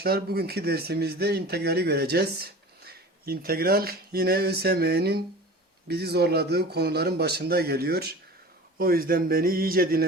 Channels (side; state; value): both; normal; correlation 0.38